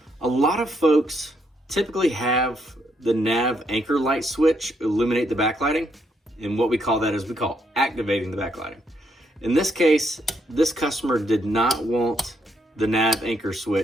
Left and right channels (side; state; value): both; normal; correlation 0.75